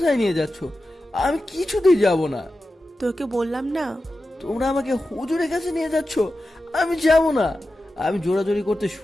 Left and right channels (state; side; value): normal; both; correlation 0.92